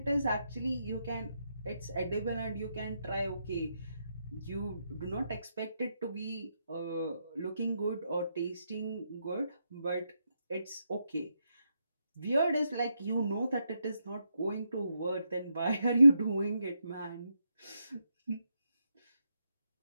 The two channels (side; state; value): both; inverted; correlation -0.82